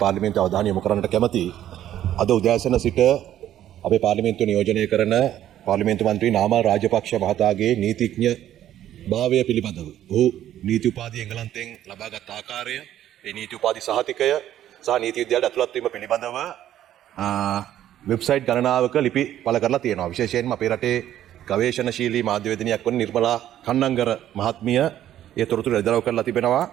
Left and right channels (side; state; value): left; quieter; 11.9 dB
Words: පාර්ලිමේන්තුව අවධානය යොමු කරන්නට කැමතියි. අද උදෑසන සිට අපේ පාර්ලිමේන්තුව නියෝජනය කරන පාර්ලිමේන්තු මන්ත්‍රී නාමල් රාජපක්ෂ මහතාගේ නීතිඥ භාවය පිළිබඳව ඔහු නීති උපාධිය එංගලන්තයෙන් ලබාගත් ආකාරය, ඒ නීති උපාධි සහතිකය සහ නීති විද්‍යාලයට ඇතුළත් වීම පිළිබඳව වෙබ්සයිට් ගණනාවක ලිපි පළ කරලා තියෙනවා. විශේෂයෙන්ම අපේ රටේ ගවේෂණශීලී මාධ්‍යවේදිනියක් වන නිර්මලා කන්නංගර මහත්මිය ඒ තොරතුරු එළිදරව් කරලා තිබෙනවා.